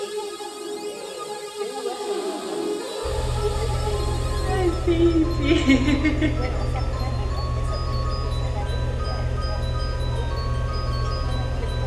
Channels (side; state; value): both; identical; correlation 1.00